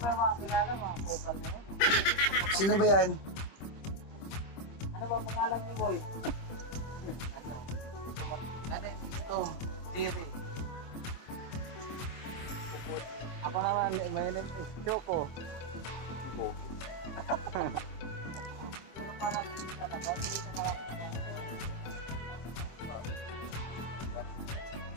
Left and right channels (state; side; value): late; right; 25 ms